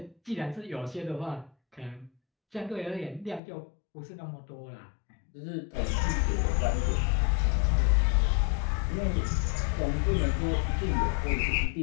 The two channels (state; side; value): drops out; right; at 3.4 s